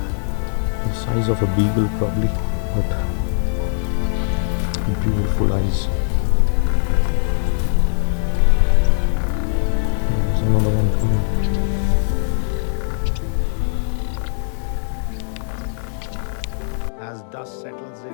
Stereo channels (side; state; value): right; silent; digital silence